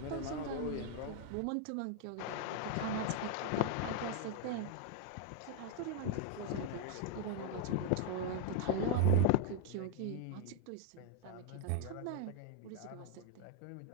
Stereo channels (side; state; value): both; different; correlation 0.00